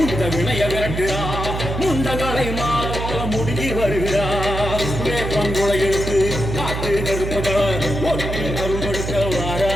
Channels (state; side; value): noise; right; hum, 4 dB below the sound